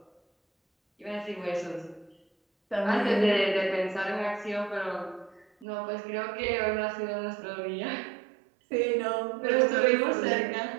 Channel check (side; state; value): left; drops out; at 5.7 s